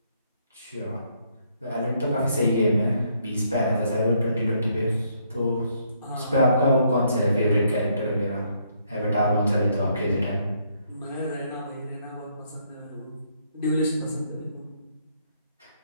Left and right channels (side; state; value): both; inverted; correlation -0.71